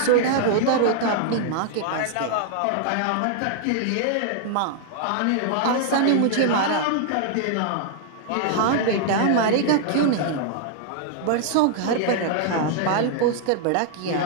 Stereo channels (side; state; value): both; different; correlation -0.01